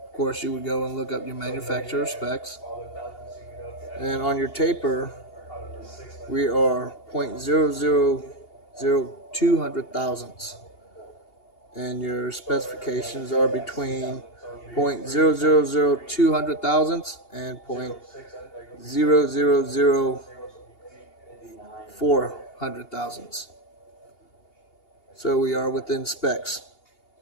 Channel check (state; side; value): late; right; 2.8 ms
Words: Of course, you would go and look up your manufacturer specs. And on your taper, we are 0.0002 hundred thousandths. And your specifications are between 0.0002 hundred thousandths and 0.0004 hundred thousandths. So we are within specs.